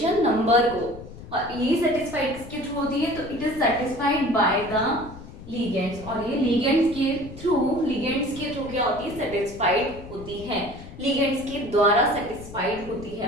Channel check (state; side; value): noise; left; rumble, 15 dB below the sound